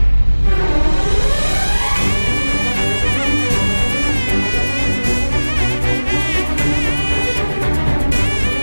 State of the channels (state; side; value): inverted; both; correlation -1.00